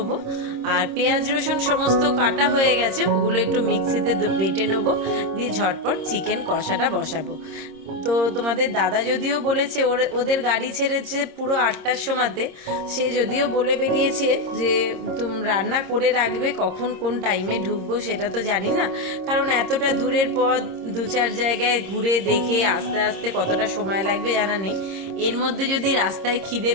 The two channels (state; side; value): late; left; 26 ms